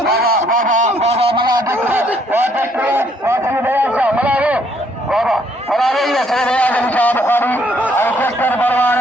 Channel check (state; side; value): normal; both; correlation 0.67